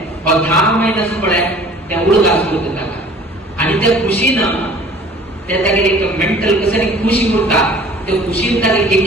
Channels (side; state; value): both; normal; correlation 0.49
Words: 10 महिन्यास पळे त्या उडगास होत होता आणि त्या खुशीनं त्या तागे एक मेंटल कसं खुशी उरता त्या खुशीत तागे